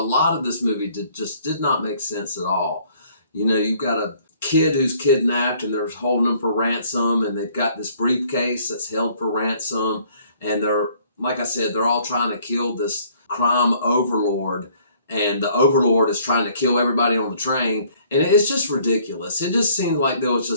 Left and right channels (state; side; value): inverted; both; correlation -0.60